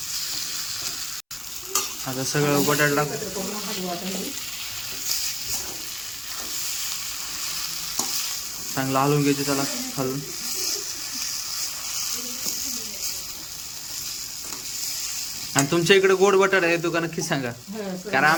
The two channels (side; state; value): both; identical; correlation 1.00